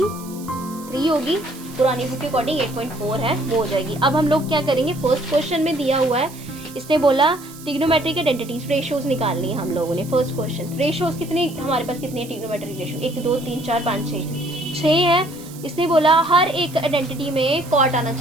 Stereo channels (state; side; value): noise; right; hiss, 18 dB below the sound